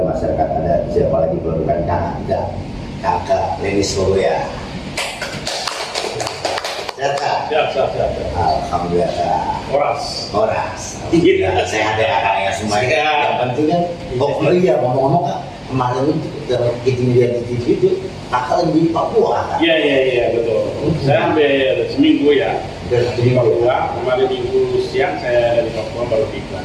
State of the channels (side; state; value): both; identical; correlation 1.00